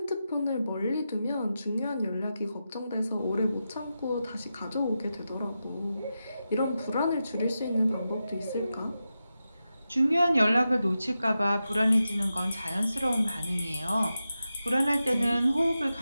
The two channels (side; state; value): both; inverted; correlation -0.90